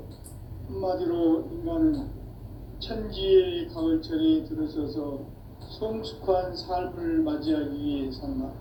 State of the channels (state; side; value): identical; both; correlation 1.00